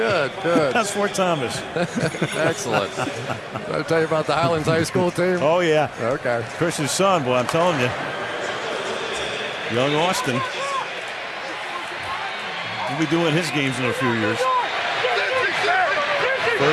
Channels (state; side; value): identical; both; correlation 1.00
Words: good. That's Fort Thomas. Excellent. Did I tell you about the Highlands High School team? Oh, yeah. Okay. Chris's son, boy, I'm telling you. Young Austin. He'll be doing his games in a few years.